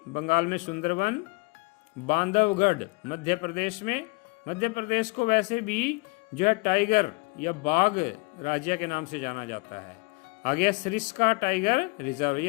बंगाल में सुंदरवन। बांधवगढ़ मध्य प्रदेश को वैसे भी जो है टाइगर या बाघ राज्य के नाम से जाना जाता है। आगे सरिस्का टाइगर रिजर्व,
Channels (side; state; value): right; quieter; 27.5 dB